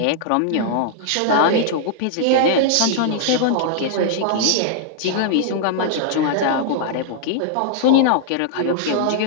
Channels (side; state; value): both; different; correlation -0.01